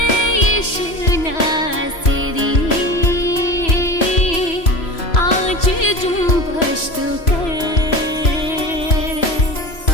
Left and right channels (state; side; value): late; right; 3.0 ms